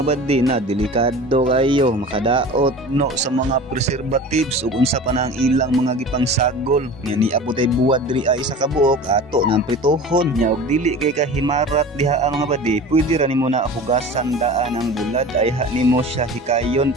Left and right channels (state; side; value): normal; both; correlation 0.37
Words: badi na delikado kayo makadaot no sa mga preservatives ug unsa pa na ang ilang mga gipangsagol nga niabot ay buwad diri isa ka buok ato nang pritohon nya og dili kay kahimarat diha mga badi. Pwede ra nimo na hugasan daan ang bulad ay ha nimo siya hikayon